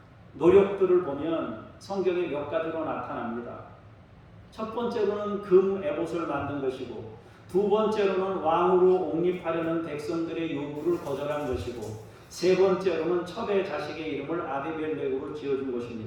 노력들을 보면 성경에 몇 가지로 나타납니다. 첫 번째로는 금 에봇을 만든 것이고, 두 번째로는 왕으로 옹립하려는 백성들의 요구를 거절한 것이고, 세 번째로는 첩의 자식의 이름을 아비멜렉으로 지어준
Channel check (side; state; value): both; identical; correlation 1.00